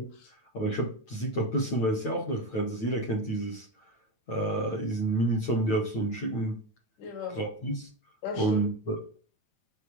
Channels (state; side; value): late; right; 9.1 ms